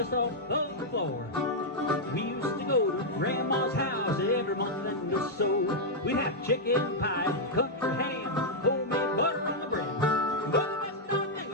off the floor, we used to go to Grandma's house every morning or so. We'd have chicken pie, country ham, homemade butter on the bread. But the best darn thing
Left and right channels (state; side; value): normal; both; correlation -0.05